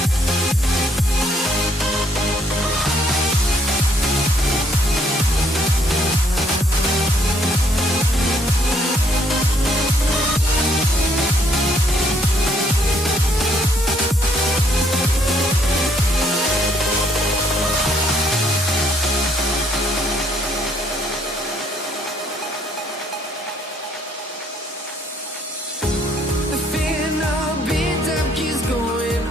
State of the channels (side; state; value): both; normal; correlation 0.67